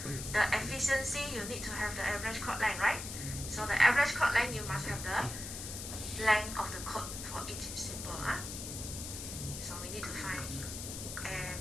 efficiency you need to have the average code length, right? So the average code length you must have the length of the code for each symbol. So we need to find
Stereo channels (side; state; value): left; noise; hiss, 7 dB below the sound